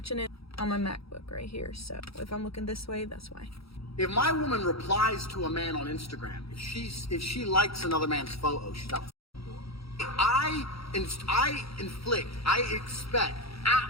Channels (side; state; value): right; late; 0.76 ms